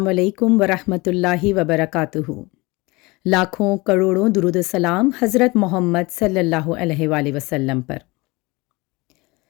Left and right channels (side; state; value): right; quieter; 23.8 dB